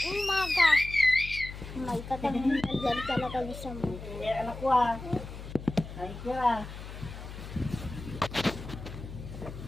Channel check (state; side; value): noise; left; hum, 11 dB below the sound